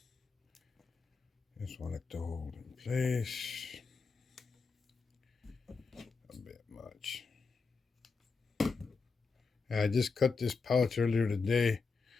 Just want it to hold in place. A bit much. I just cut this pouch earlier today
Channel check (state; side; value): quieter; right; 4.7 dB